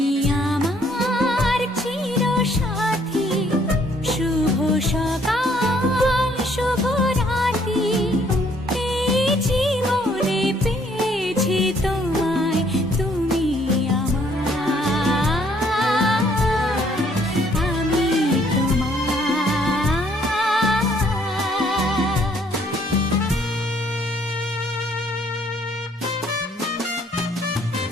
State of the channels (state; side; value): normal; both; correlation 0.65